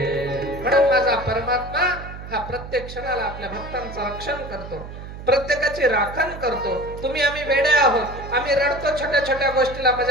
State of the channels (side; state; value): right; noise; hum, 12 dB below the sound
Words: म्हणून माझा परमात्मा हा प्रत्येक क्षणाला आपल्या भक्तांचं रक्षण करतो, प्रत्येकाची राखण करतो. तुम्ही आम्ही वेडे आहोत, आम्ही रडतो छोट्या छोट्या गोष्टीला,